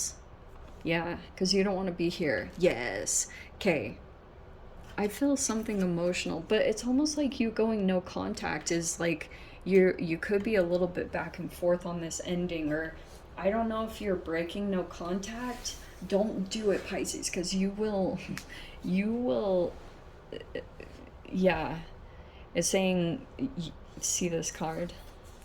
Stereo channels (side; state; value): both; identical; correlation 1.00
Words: Yeah, because you don't want to be here. Yes. Okay. I feel something emotional, but it's almost like you going no contact is like you could be a little bit back and forth on this ending, or I don't know if you're breaking no contact. Don't do it, Pisces, because you will, yeah. It's saying, see this card?